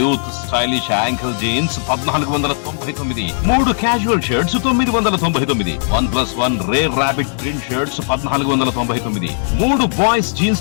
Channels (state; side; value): silent; right; digital silence